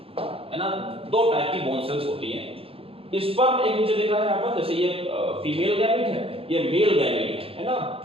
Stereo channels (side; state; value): left; late; 0.27 ms